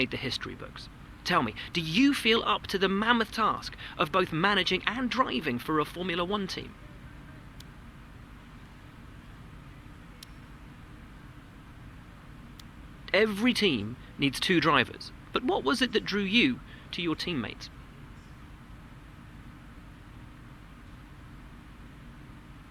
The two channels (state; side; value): identical; both; correlation 1.00